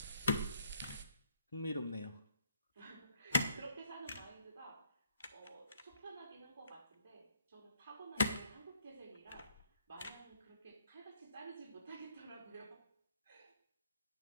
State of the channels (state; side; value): inverted; both; correlation -0.69